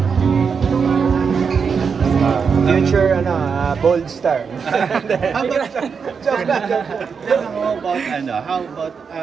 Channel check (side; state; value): left; quieter; 5.9 dB